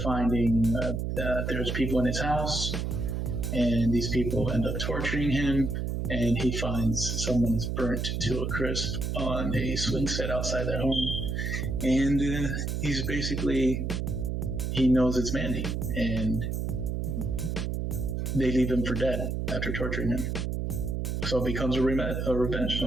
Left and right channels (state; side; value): noise; right; hum, 1 dB below the sound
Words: finding there's people in his house, and these people end up torturing him, and he finds someone is burnt to a crisp on a swing set outside their home, and he knows it's Mandy, and they leave him for dead after torturing him. So it becomes a revenge